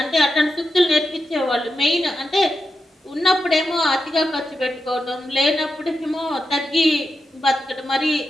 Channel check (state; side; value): normal; both; correlation 0.88